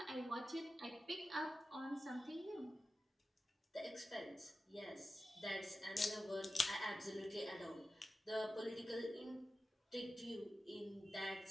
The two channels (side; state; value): both; normal; correlation 0.93